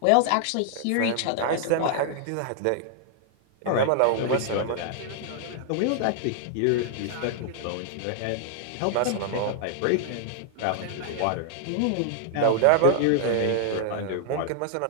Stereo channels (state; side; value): different; both; correlation 0.00